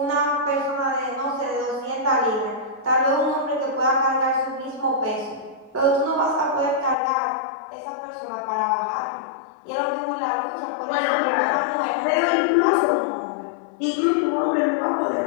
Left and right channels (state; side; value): drops out; right; at 7.0 s